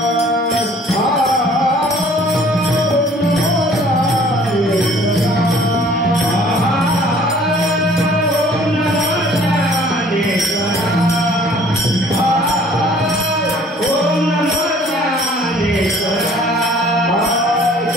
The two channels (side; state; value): both; normal; correlation 0.54